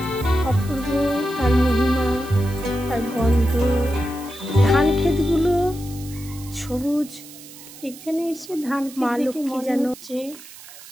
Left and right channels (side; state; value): right; noise; hiss, 17 dB below the sound